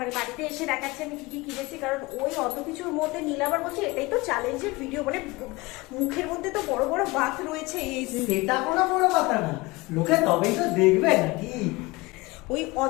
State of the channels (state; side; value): quieter; right; 22.7 dB